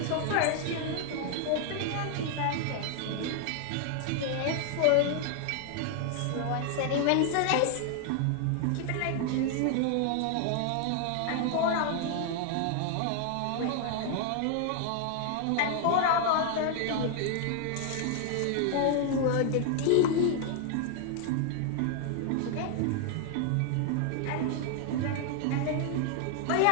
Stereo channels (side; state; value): both; different; correlation 0.00